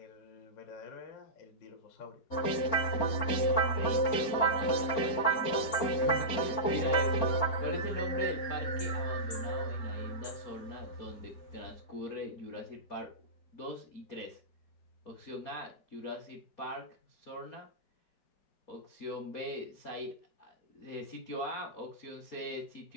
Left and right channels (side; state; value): right; late; 4.4 ms